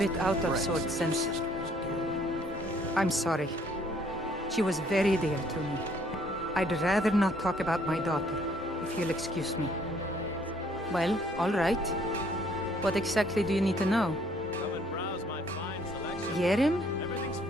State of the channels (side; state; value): both; normal; correlation 0.63